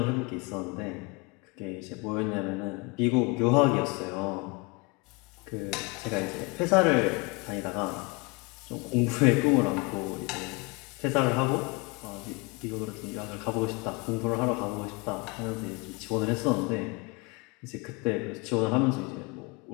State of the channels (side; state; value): right; quieter; 27.9 dB